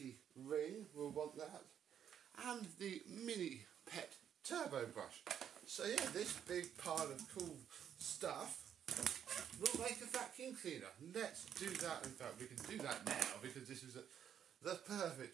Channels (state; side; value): quieter; left; 9.1 dB